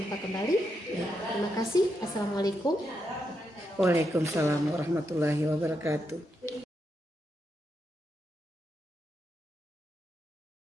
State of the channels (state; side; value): normal; both; correlation 0.83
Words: kembali. Terima kasih. Assalamualaikum. Waalaikumsalam warahmatullahi wabarakatuh.